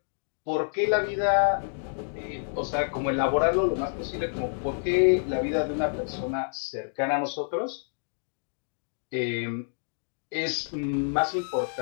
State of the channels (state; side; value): silent; right; digital silence